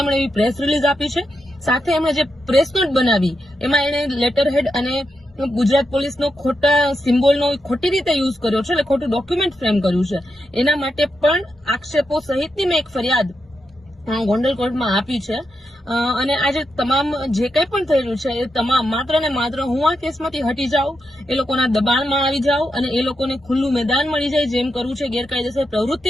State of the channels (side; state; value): both; normal; correlation 0.86